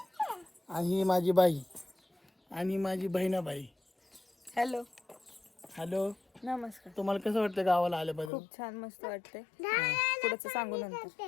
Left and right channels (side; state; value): right; drops out; at 8.3 s